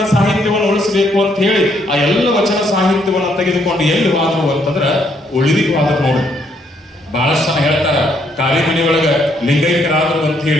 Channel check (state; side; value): normal; both; correlation 0.71